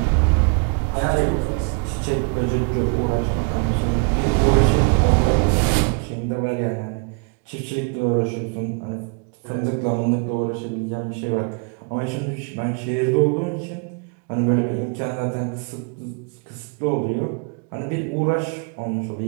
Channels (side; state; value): left; quieter; 36.0 dB